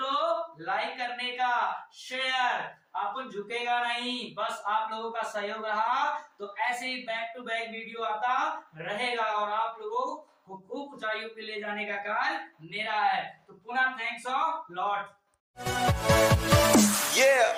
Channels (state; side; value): identical; both; correlation 1.00